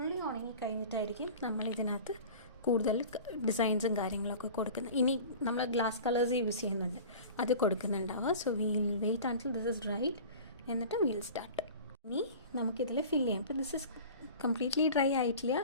ഉണങ്ങി കഴിഞ്ഞിട്ടായിരിക്കും നമ്മൾ ഇതിനകത്ത് കൂടുതൽ ഡിസൈൻസും കാര്യങ്ങളൊക്കെ കൊടുക്കുന്നത്. ഇനി നമ്മൾ ഗ്ലാസ് കളേഴ്സ് യൂസ് ചെയ്യുന്നുണ്ട്, അത് കൊടുക്കുന്നുണ്ടാവുക. So we'll wait until this is dried, എന്നിട്ട് വീൽ സ്റ്റാർട്ട്. ഇനി നമുക്കിതിൽ ഫില്ല് ചെയ്യാം. ഇപ്പോൾ ദിസ് ഇസ് കംപ്ലീറ്റ്ലി ഡ്രൈ ആയിട്ടില്ല,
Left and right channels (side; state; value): both; inverted; correlation -0.39